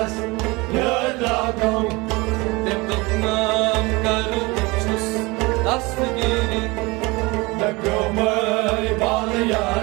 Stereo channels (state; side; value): quieter; left; 24.3 dB